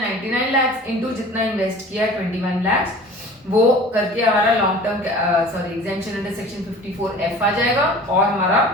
lakhs इंटू जितना इन्वेस्ट किया है 21 lakhs, वो करके हमारा long term exemption under section 54F आ जाएगा, और हमारा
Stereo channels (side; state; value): both; normal; correlation 0.42